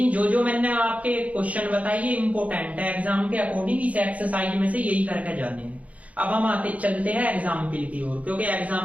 जो मैंने आपके क्वेश्चन बताए ये इंपॉर्टेंट है, एग्जाम के अकॉर्डिंग इस एक्सरसाइज में से यही करके जाने हैं। अब हम चलते हैं एग्जाम्पल की ओर, क्योंकि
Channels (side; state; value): left; late; 0.068 ms